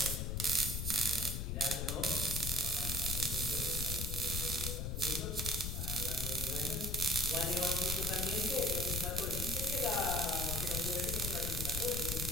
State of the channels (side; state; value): left; noise; rumble, 1 dB below the sound